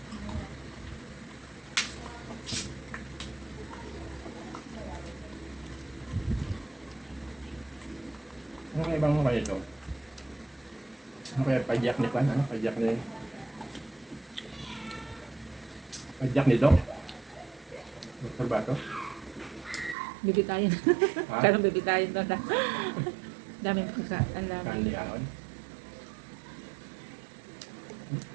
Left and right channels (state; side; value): drops out; left; at 20.0 s